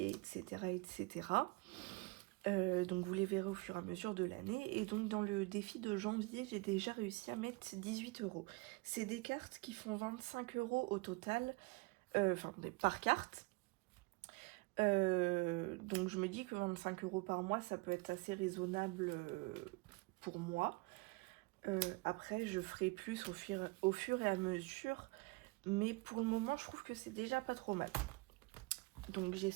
etc. etc. Donc vous les verrez au fur et à mesure de l'année. Et donc dans le défi de janvier, j'ai déjà réussi à mettre 18 €. C'est des cartes qui font 25 € au total, enfin par carte. Donc je me dis que 25 € par mois, ça peut être assez raisonnable pour moi. Après, je ferai plus au fur et à mesure, mais pour le moment, je trouve que c'est déjà pas trop mal. Donc j'ai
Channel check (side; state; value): left; quieter; 25.8 dB